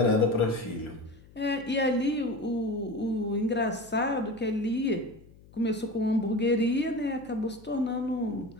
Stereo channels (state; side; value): noise; left; hum, 24 dB below the sound